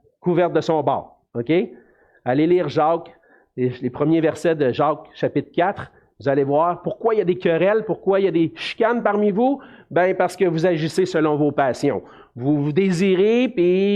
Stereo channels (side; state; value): both; identical; correlation 1.00